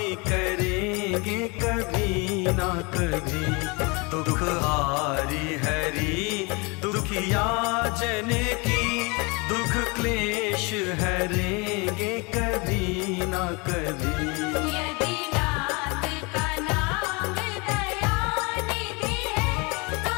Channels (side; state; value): right; quieter; 28.8 dB